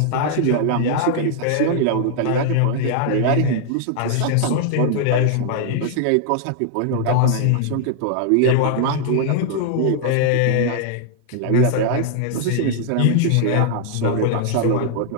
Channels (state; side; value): different; both; correlation 0.00